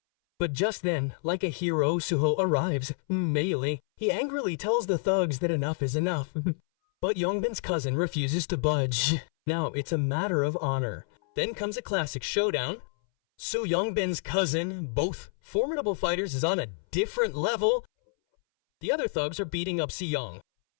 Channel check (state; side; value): silent; right; 59 dB below the other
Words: But just then, like a hero, Suho arrives. Melee. He angrily tells the thugs that enough is enough. But Yongbin's cousin refuses to budge. Now, it's a matter of honor. Then comes a classic showdown. Soo Yongbin's cousin, both formidable fighters, is on a different level. The other thugs are beating up Seo-yeon.